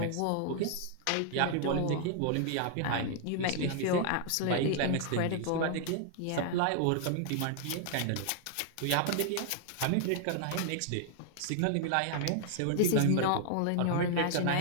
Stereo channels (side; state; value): both; different; correlation 0.00